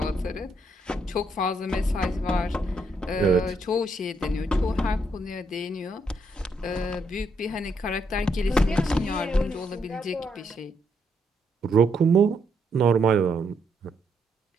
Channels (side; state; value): both; normal; correlation 0.76